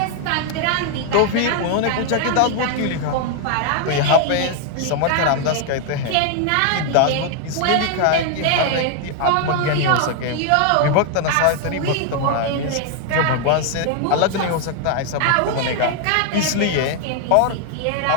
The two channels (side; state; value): both; different; correlation 0.00